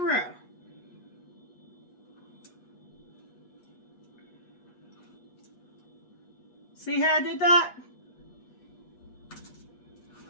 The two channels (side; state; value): right; late; 8.3 ms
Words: See how I did that?